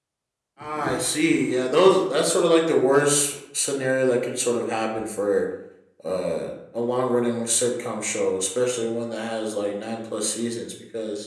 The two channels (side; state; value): both; identical; correlation 1.00